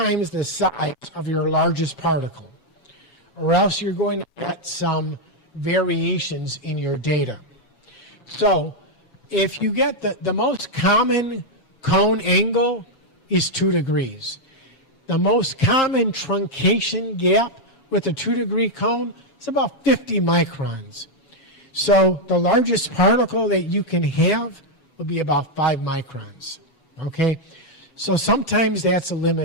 the size of your largest particle, or else you're going to get some variations in your data. So if you get the most common cone angle is 2 degrees. The most common truncation gap with a 2-degree cone is about 50 microns. So the largest particle that you can have will be about 5 microns, okay? So sometimes that's a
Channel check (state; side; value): late; right; 7.1 ms